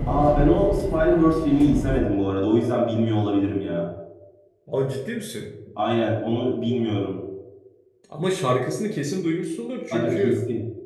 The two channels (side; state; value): both; identical; correlation 1.00